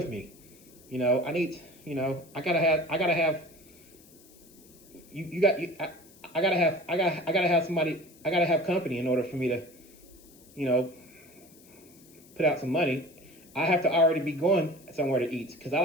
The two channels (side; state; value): left; noise; hiss, 25 dB below the sound